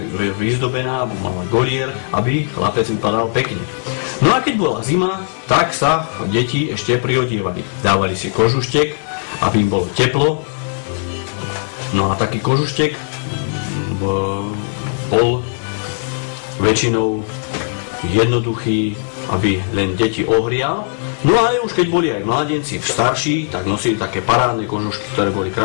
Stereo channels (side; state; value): right; silent; 58 dB below the other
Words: vyzdobená, mala golier, aby chlapec vypadal pekne. No a keď bola zima, tak sa deti ešte priodievali. Dávali si kožuštek, aby im bolo teplo. No a taký kožuštek bol väčšinou jednoduchý, aby len deti ohrial. No ale už keď boli aj mladenci starší, tak nosili také parádne kožušky, ktoré boli